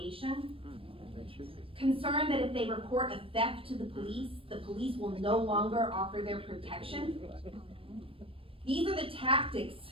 Concerned that if they report a theft to the police will no longer offer their protection. These are the tactics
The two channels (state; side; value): late; left; 0.26 ms